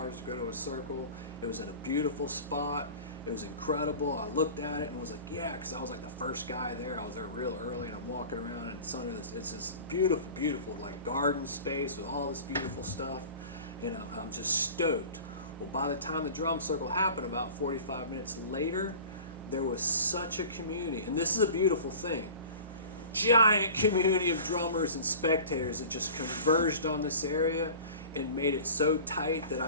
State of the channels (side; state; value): both; inverted; correlation -0.40